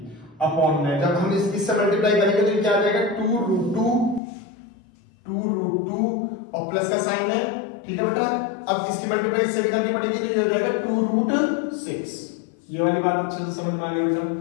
अपॉन में, जब हम इससे मल्टीप्लाई करेंगे तो ये क्या आ जाएगा, 2√2 और प्लस का साइन है, ठीक है बेटा। अब इसकी मल्टीप्लाई इससे भी करनी पड़ेगी, तो ये हो जाएगा 2√6। ये वाली बात अच्छे से समझ में आ गई बेटा।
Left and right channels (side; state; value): right; drops out; at 4.2 s